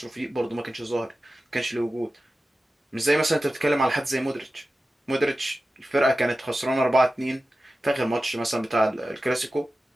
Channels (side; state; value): both; normal; correlation 0.94